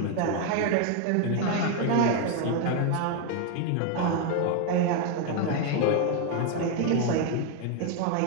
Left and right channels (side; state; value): both; different; correlation 0.01